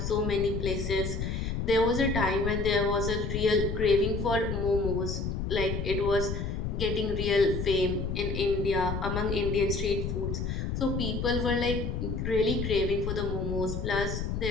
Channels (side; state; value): left; noise; rumble, 3 dB below the sound